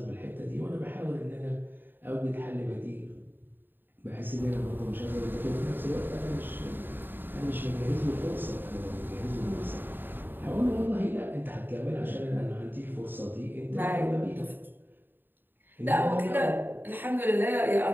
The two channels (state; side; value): late; left; 0.094 ms